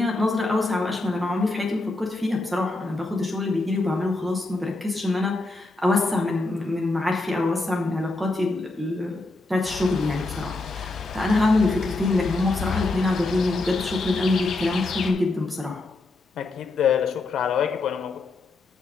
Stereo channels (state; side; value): quieter; right; 3.1 dB